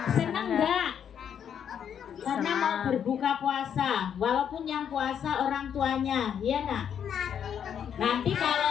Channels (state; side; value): quieter; right; 8.5 dB